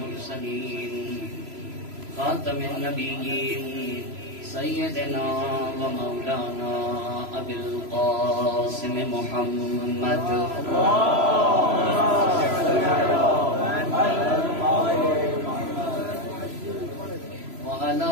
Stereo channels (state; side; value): late; left; 3.0 ms